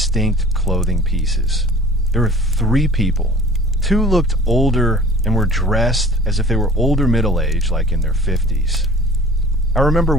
clothing pieces. There were 3 people. 2 looked older and were dressed as if they were older middle-aged, like in their 50s. I remember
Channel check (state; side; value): normal; both; correlation 0.47